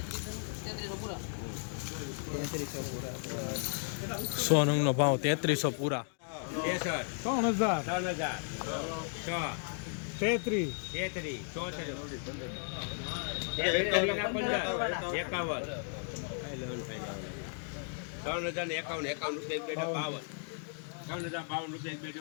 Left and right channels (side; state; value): right; silent; 55 dB below the other